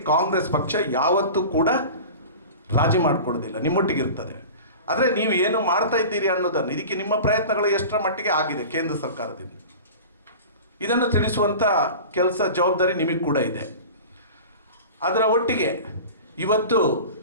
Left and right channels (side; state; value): both; inverted; correlation -0.35